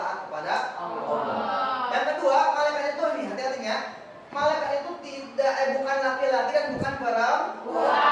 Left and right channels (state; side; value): identical; both; correlation 1.00